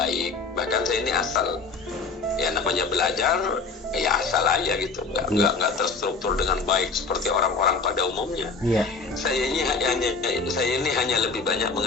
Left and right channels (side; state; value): right; quieter; 4.4 dB